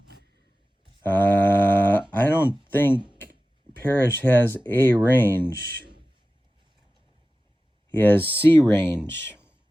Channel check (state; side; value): normal; both; correlation 0.95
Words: I don't think Parrish has A range. He has C range.